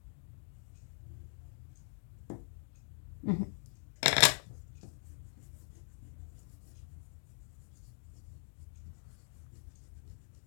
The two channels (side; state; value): right; silent; digital silence